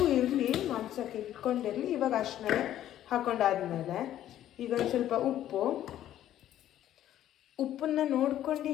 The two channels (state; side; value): quieter; right; 12.1 dB